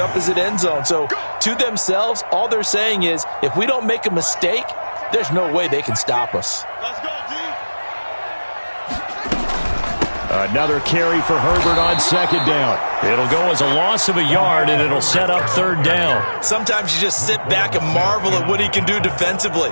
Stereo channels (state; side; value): inverted; both; correlation -1.00